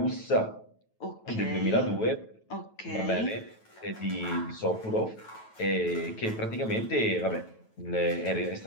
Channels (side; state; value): right; late; 9.2 ms